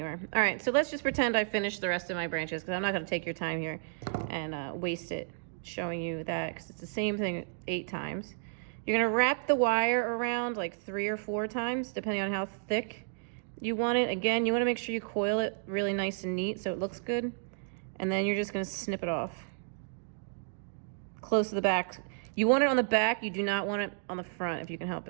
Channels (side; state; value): left; silent; digital silence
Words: All right, so let's just pretend I finished the rest of my branches because I'm not gonna take your time here and waste it showing you that because it's the same thing 8 times. You're gonna wrap the wire around like 3 or 4 times, depending on how thick you want it. Again, you wanna make sure you coil it really nice and neat so it looks good. And then you're just gonna snip it off. Close to the back. You want it on the back, you do not want it on the front if you can help